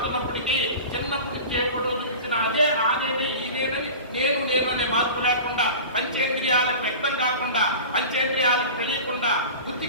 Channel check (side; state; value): both; inverted; correlation -0.34